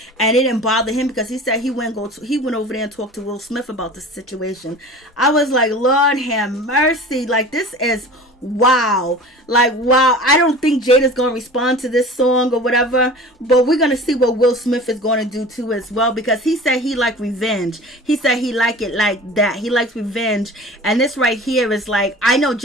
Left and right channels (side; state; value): both; normal; correlation 0.39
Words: and it didn't bother him because he said he went over there and talked to Will Smith about the situation. I was like, Lord have mercy. Like, this is wow. Like, wow. I don't think Jada's going to respond to this song or whatever, but we're going to see what Will Smith is going to do too as well, because he said he liked revenge. He said he liked it like that. He likes revenge. And this right here is like, I know